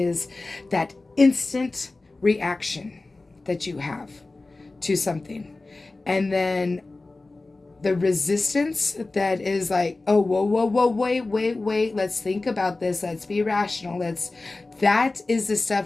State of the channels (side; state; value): right; quieter; 3.3 dB